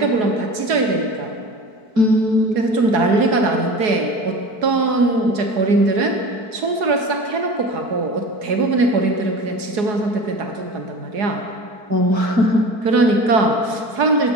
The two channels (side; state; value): left; late; 4.7 ms